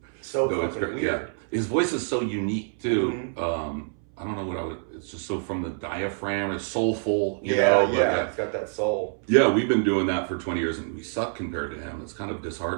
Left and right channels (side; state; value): left; silent; 61 dB below the other